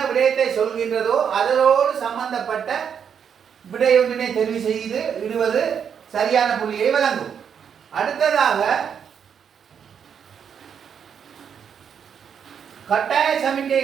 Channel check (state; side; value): quieter; left; 7.6 dB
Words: விடயத்தை சொல்கின்றதோ அதனோடு சம்பந்தப்பட்ட விடையொன்றினை தெரிவு செய்து இடுவது சரியான புள்ளியை வழங்கும். அடுத்ததாக கட்டாய